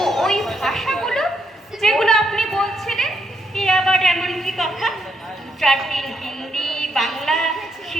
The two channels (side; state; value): both; normal; correlation 0.77